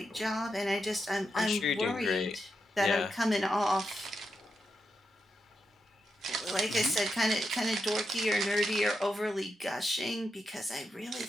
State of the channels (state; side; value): normal; both; correlation 0.86